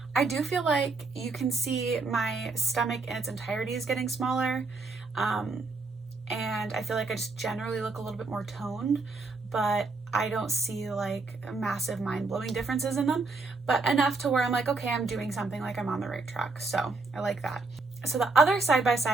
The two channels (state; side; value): quieter; left; 3.7 dB